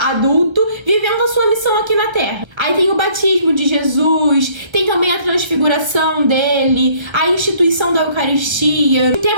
adulto, vivendo a sua missão aqui na Terra. Aí tem o batismo de Jesus, tem também a transfiguração dele, a instituição da Eucaristia. E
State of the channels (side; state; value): left; late; 1.3 ms